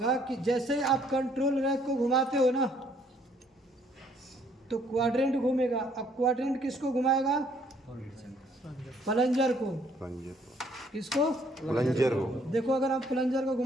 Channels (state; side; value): normal; both; correlation 0.64